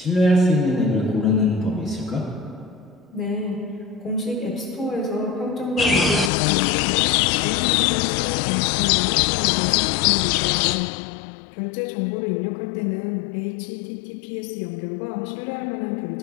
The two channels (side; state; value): right; drops out; at 6.3 s